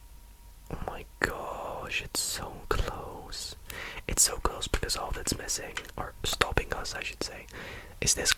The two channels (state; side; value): identical; both; correlation 1.00